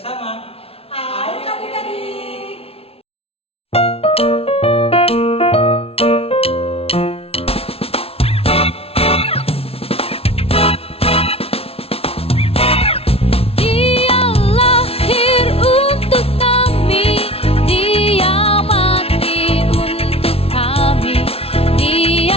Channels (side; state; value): right; late; 0.28 ms